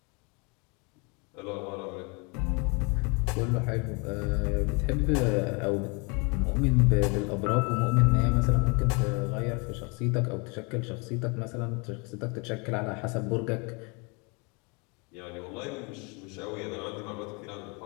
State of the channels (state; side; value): quieter; right; 31.3 dB